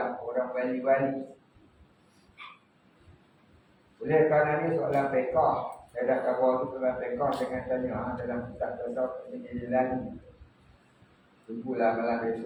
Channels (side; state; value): both; identical; correlation 1.00